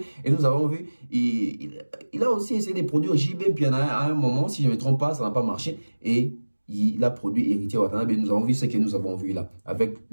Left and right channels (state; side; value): inverted; both; correlation -1.00